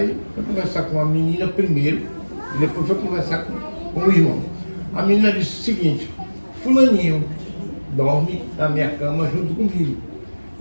foi conversar com a menina primeiro, e depois foi conversar com o irmão. A menina disse o seguinte, fulaninho dorme na minha cama junto comigo.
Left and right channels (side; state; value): both; inverted; correlation -1.00